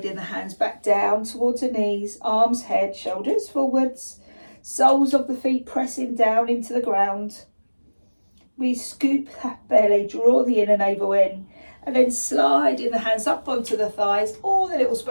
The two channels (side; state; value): both; inverted; correlation -1.00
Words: the hands back down towards the knees, arms, head, shoulders forwards. Soles of the feet pressing down into the ground. We scoop that belly, draw the inner navel in, and then sliding the hands up onto the thighs or the little